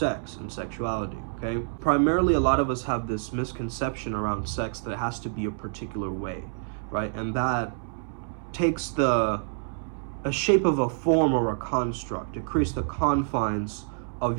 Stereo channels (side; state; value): left; silent; 60 dB below the other